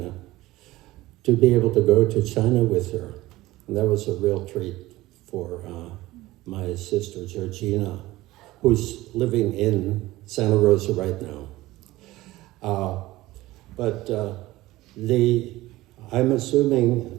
to be able to go to China with her. And that was a real treat for my sister, Georgina, who's living in Santa Rosa right now. I'm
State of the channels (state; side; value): quieter; left; 17.9 dB